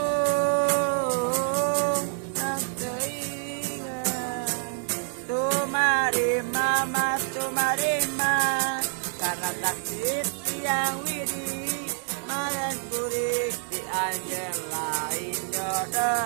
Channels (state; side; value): silent; left; 60 dB below the other